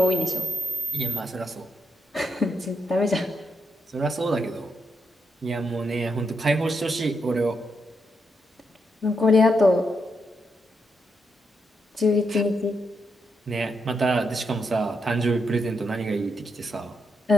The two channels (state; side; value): normal; both; correlation 0.82